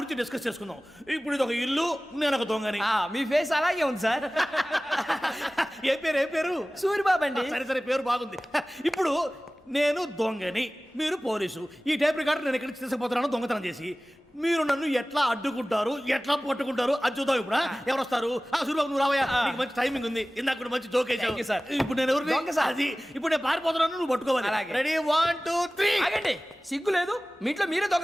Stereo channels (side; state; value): both; normal; correlation 0.98